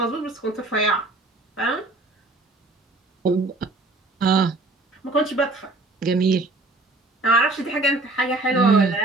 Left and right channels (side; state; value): left; quieter; 3.0 dB